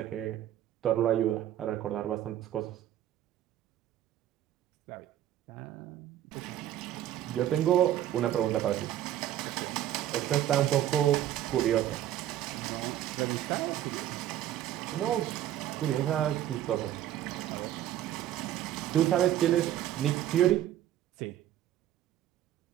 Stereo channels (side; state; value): left; quieter; 12.2 dB